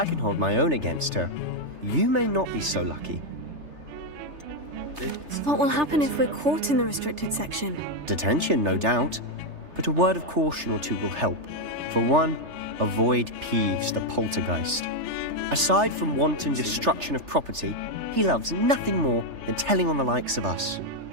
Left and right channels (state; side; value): late; left; 3.3 ms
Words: can hold my own against her. You may not be so lucky. What will happen if we're caught in the restricted section? Detention, no doubt, but a word of caution or two will help. For one, avoid Peeves the poltergeist. Aside from wanton destruction of property, he loves nothing more than telling on the likes of us.